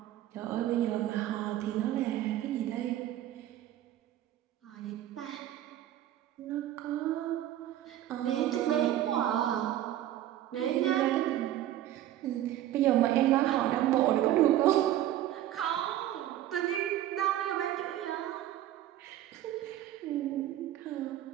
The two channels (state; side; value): quieter; left; 12.9 dB